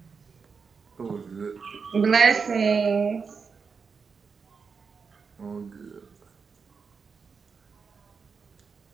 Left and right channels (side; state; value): left; quieter; 5.4 dB